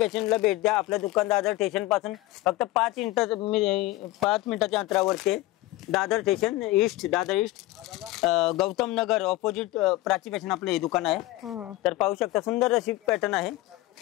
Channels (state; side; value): quieter; right; 18.1 dB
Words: भेट द्या. आपल्या दुकान दादर स्टेशन पासून फक्त 5 मिनिटाच्या अंतरावरती Dadar station east, Dadar east, Gautam Nagar opposite Prachi fashion आपलं हे दुकान आहे. तर पाहू शकता सुंदर अशी पॅटर्न आहे.